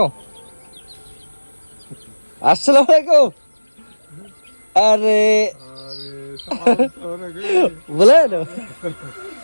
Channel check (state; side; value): inverted; both; correlation -1.00